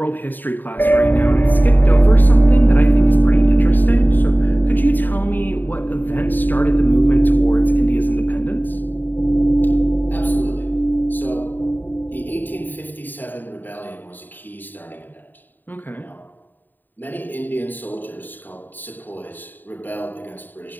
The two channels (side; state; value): right; late; 0.090 ms